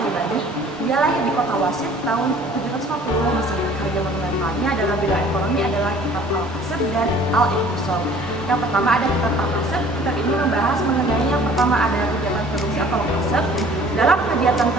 Dia lahir di kota Wasit tahun 750 Masehi. Karya monumentalnya dalam bidang ekonomi adalah Kitab Al-Kasab dan Al-Iqtisad. Yang pertama ada Kitab Al-Kasab. Kitab ini membahas mengenai yang pertama ada kegiatan produksi atau kasab. Dalam kegiatan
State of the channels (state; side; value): normal; both; correlation 0.51